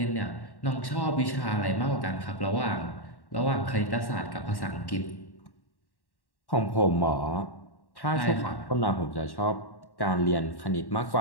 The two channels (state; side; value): late; right; 1.1 ms